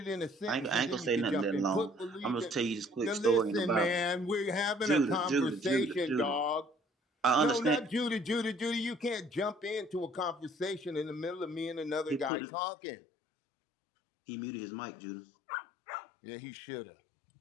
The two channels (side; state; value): right; drops out; at 12.3 s